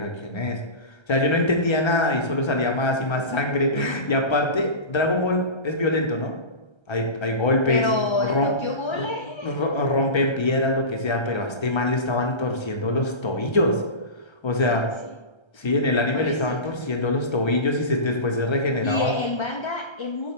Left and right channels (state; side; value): late; right; 1.3 ms